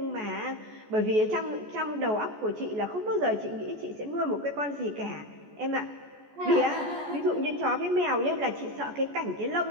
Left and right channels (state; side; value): late; left; 14 ms